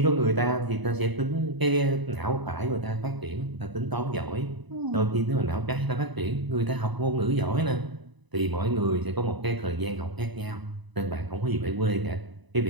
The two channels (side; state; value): left; late; 1.0 ms